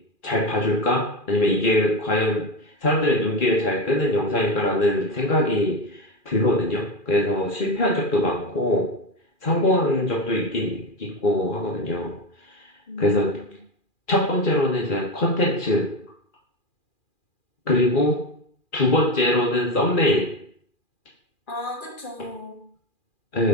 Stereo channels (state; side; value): late; right; 2.4 ms